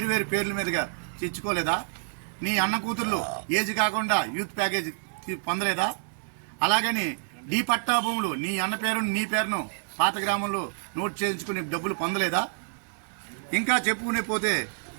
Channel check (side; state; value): left; silent; digital silence